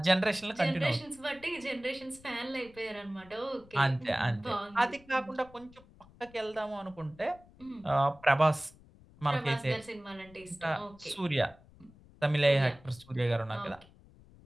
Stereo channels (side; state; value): left; noise; rumble, 25 dB below the sound